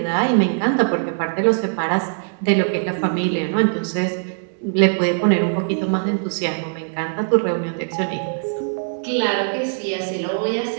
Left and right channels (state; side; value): silent; left; digital silence